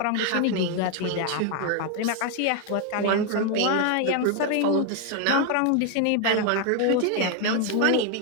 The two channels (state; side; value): different; both; correlation 0.01